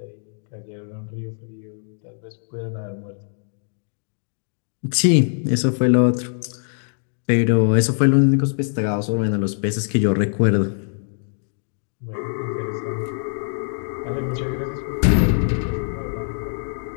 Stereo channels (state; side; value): silent; right; digital silence